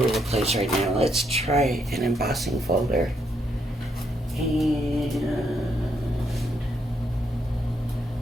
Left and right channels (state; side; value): normal; both; correlation 0.76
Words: the place right now. Let's try an embossing folder. And